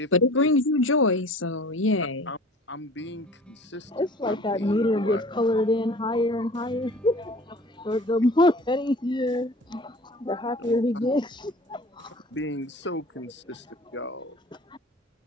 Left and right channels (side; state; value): both; normal; correlation 0.44